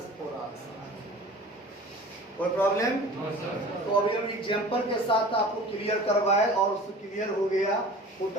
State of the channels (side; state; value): both; normal; correlation 0.41